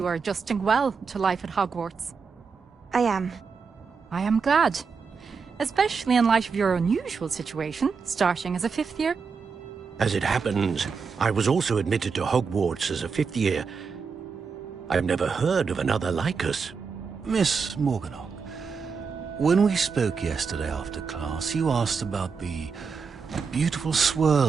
are adjusting well to life at Hogwarts. I am. I am glad. Especially in light of your unusual situation, starting as a 5th year. As it happens, I was also admitted to Hogwarts as a 5th year. I've never heard of another like us. Miss Morganach, when we spoke yesterday after class, you asked about the beautiful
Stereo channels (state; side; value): quieter; left; 5.4 dB